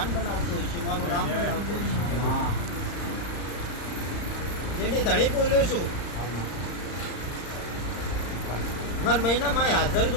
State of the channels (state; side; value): late; right; 35 ms